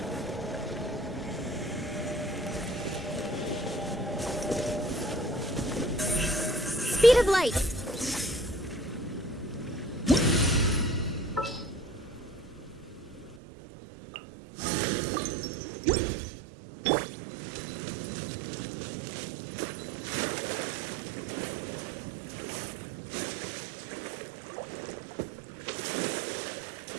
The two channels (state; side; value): drops out; left; at 13.4 s